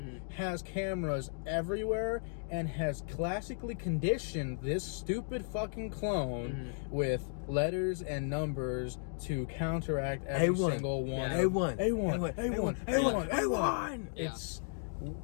has cameras everywhere, and has classically conditioned this stupid fucking clone with letters and numbers to counteract every single one. A1. It's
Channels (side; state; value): right; silent; digital silence